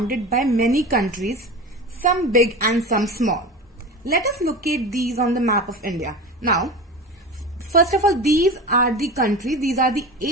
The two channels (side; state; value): both; normal; correlation 0.30